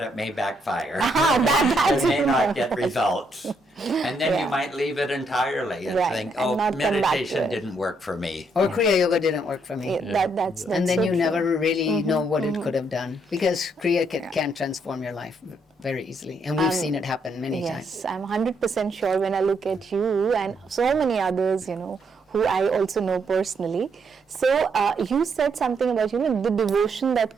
it may backfire. that's You may not get results. And then you might leave it entirely and Right, think, and oh, not come back to meditation it. didn't work for me. Or Kriya Yoga didn't work for me. That's And then so you true. never really know what it could have done, because Kriya can transform your life very easily, and we've seen it happen many times. Yes, I'm 100% sure when I look at you and so many others, who I also know personally. So you said something about, the devotion that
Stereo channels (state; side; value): normal; both; correlation 0.74